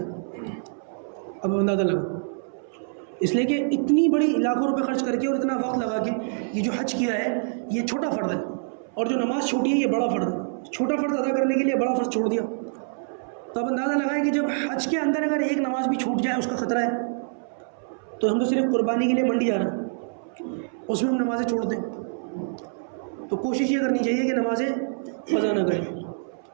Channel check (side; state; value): left; silent; 61 dB below the other